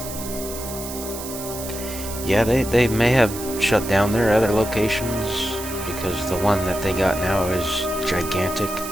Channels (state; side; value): noise; right; hiss, 10 dB below the sound